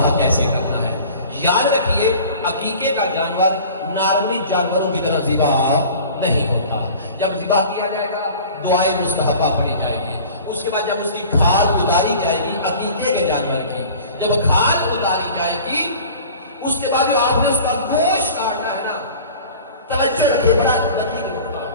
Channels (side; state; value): both; inverted; correlation -0.43